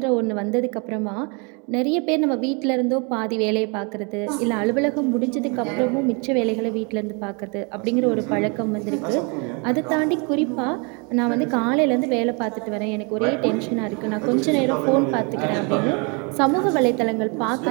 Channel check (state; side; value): quieter; left; 33.5 dB